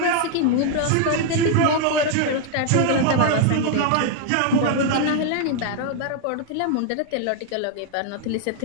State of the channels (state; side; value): different; both; correlation 0.00